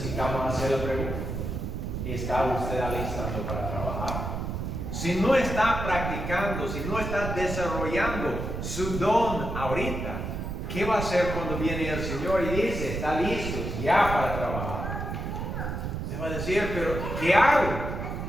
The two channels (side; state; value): right; noise; rumble, 4 dB below the sound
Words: hacer la pregunta: ¿está usted alistando para trabajar? Si no está practicando, si no está desarrollando su don ahorita, ¿qué va a hacer cuando viene el Señor y dice, está listo ya para trabajar? Se va a decir, pero ¿qué hago?